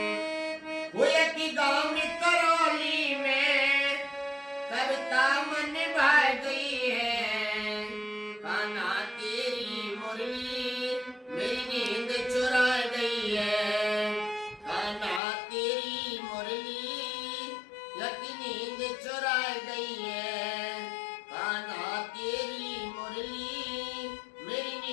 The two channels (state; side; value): drops out; right; at 15.2 s